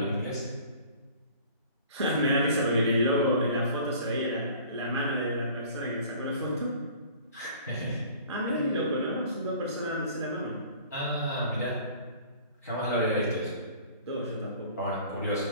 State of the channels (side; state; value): both; inverted; correlation -0.48